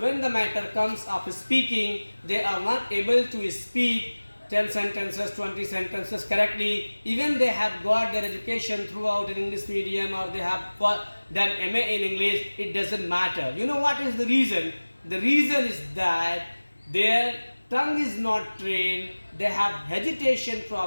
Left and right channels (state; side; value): inverted; both; correlation -1.00